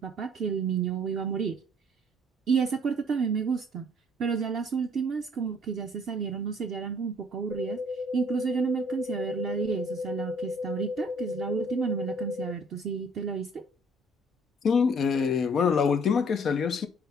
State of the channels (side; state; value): both; normal; correlation 0.58